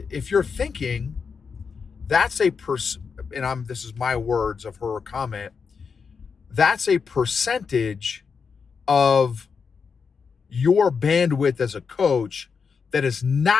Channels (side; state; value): right; quieter; 5.7 dB